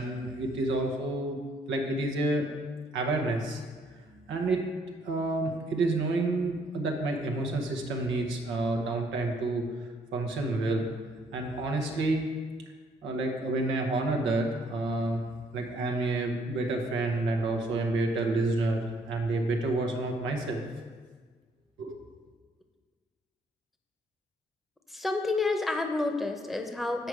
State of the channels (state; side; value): normal; both; correlation 0.67